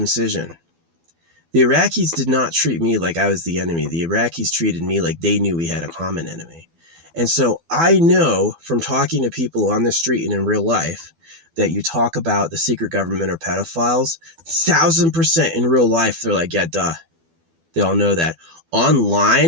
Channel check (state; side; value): late; left; 12 ms